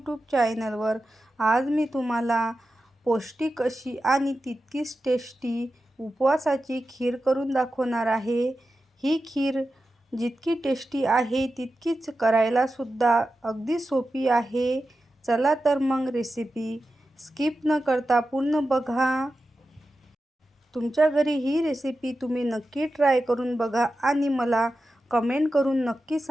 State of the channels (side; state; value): both; normal; correlation 0.92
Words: चॅनलवर। आज मी तुम्हाला पौष्टिक अशी आणि तितकीच टेस्टी उपवासाची खीर करून दाखवणार आहे। ही खीर जितकी टेस्टी आहे तितकीच करायला सुद्धा अगदी सोपी आहे। चला तर मग रेसिपी स्किप न करता पूर्ण बघा। तुमच्या घरी ही रेसिपी तुम्ही नक्की ट्राय करून बघा आणि मला कमेंट करून नक्की